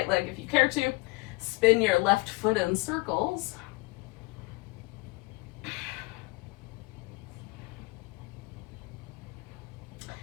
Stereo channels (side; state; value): right; quieter; 25.2 dB